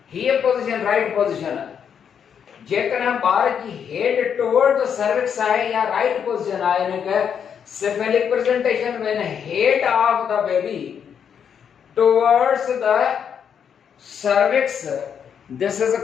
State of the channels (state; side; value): quieter; right; 7.7 dB